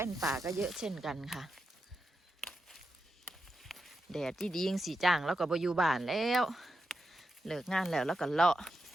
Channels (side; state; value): both; normal; correlation 0.88